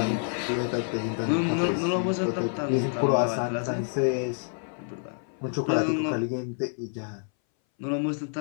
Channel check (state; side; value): silent; right; 59 dB below the other